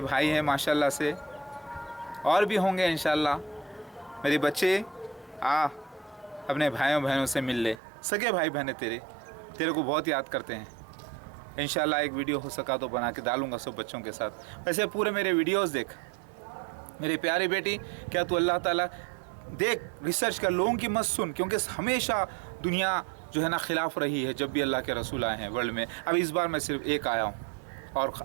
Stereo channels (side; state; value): left; drops out; at 7.8 s